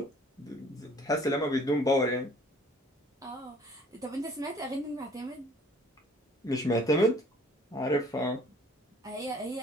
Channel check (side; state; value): both; normal; correlation 0.55